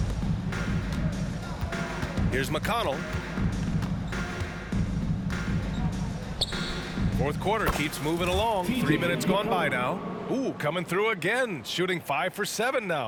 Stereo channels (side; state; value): both; identical; correlation 1.00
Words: Here's McConnell. Fourth quarter keeps moving along. 3 minutes gone by now. Ooh, coming through again. Shooting 5 for 7